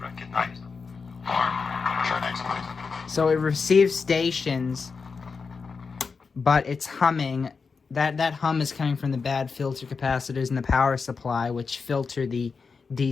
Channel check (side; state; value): right; quieter; 5.0 dB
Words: So it receives stations, but it's humming. That hum is coming from the bad filter capacitors in the power supply, which filter the